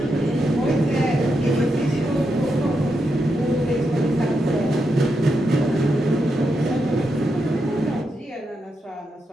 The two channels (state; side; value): normal; both; correlation 0.84